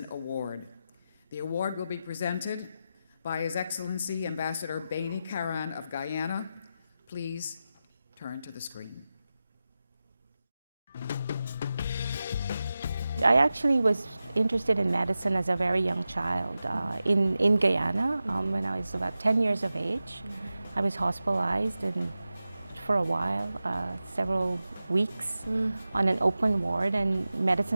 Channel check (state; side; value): inverted; both; correlation -0.93